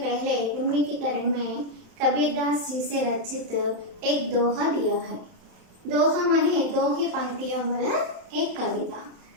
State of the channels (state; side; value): late; left; 31 ms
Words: उन्मीकीकरण में कबीरदास जी से रचित एक दोहा दिया है। दोहा माने दो ही पंक्तियों वाला एक कविता।